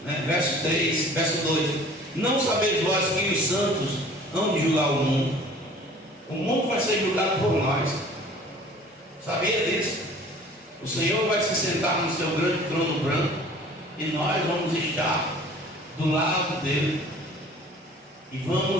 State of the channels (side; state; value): both; normal; correlation 0.48